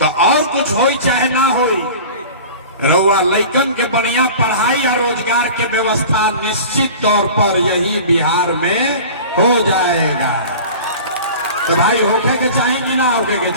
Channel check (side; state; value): both; inverted; correlation -0.38